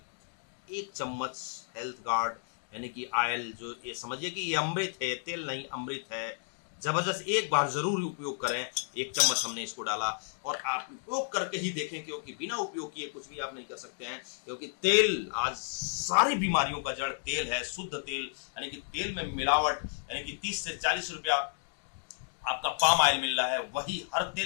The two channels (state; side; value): silent; right; digital silence